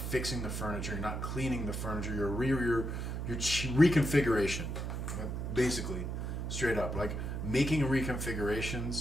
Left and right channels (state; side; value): noise; right; hum, 3 dB below the sound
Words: the furniture. You're not cleaning the furniture. Your reconfiguration, basically, straight up. Like making